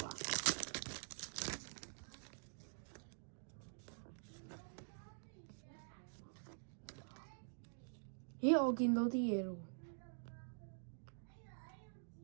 啦。咦，我見到啲嘢咯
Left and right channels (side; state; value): left; silent; digital silence